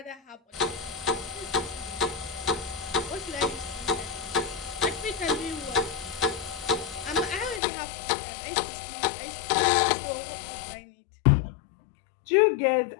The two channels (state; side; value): drops out; right; at 7.6 s